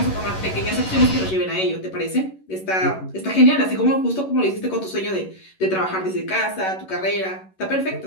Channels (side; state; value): right; late; 11 ms